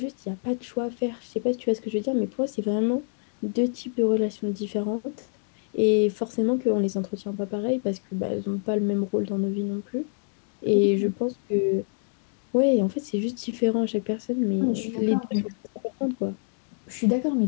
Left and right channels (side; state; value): right; silent; 60 dB below the other